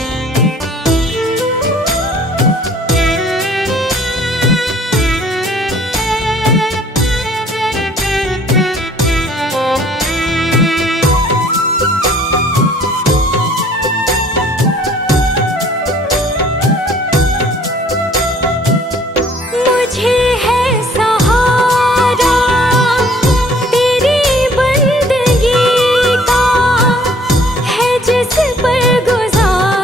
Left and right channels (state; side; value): normal; both; correlation 0.56